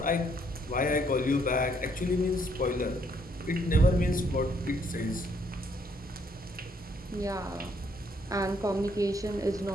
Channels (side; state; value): both; normal; correlation 0.69